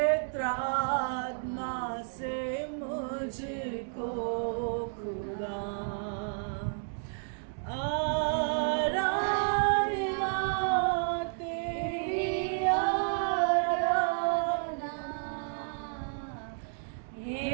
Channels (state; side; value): silent; left; digital silence